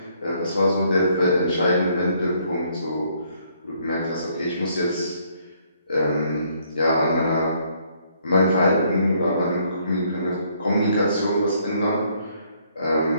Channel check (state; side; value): inverted; both; correlation -0.68